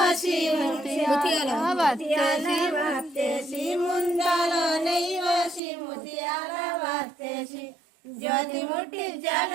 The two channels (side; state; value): left; drops out; at 5.6 s